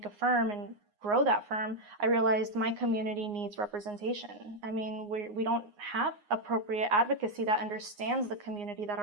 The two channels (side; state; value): left; late; 9.6 ms